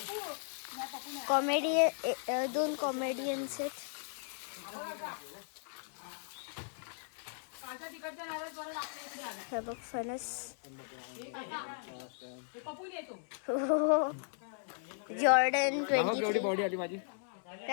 कॉमेडी 2 कॉमेडियन्स आहेत. हे बघ फणस. जॉर्डन 23. बॉडी आली माझी.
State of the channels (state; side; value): silent; right; 53 dB below the other